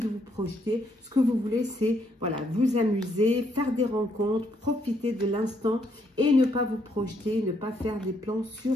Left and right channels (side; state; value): both; normal; correlation 0.73